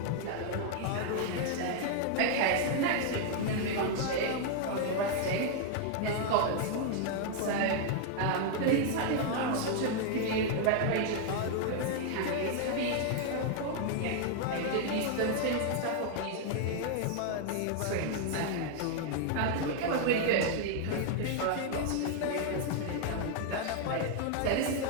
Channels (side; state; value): both; different; correlation 0.00